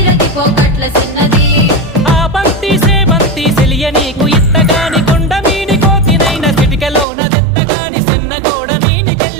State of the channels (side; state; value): left; drops out; at 7.1 s